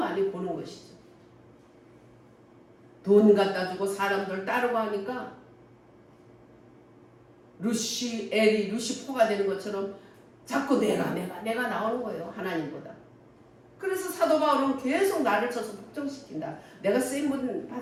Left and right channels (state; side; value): identical; both; correlation 1.00